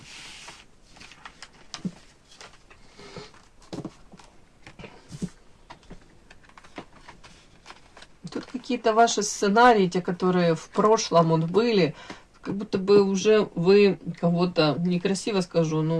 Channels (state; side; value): identical; both; correlation 1.00